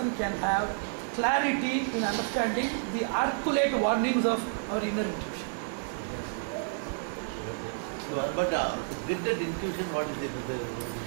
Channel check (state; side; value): silent; left; 58 dB below the other